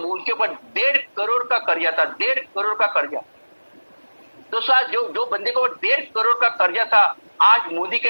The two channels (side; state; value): both; inverted; correlation -1.00